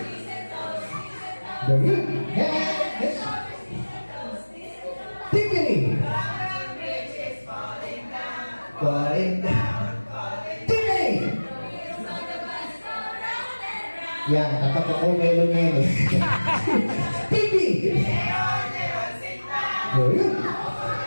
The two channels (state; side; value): inverted; both; correlation -1.00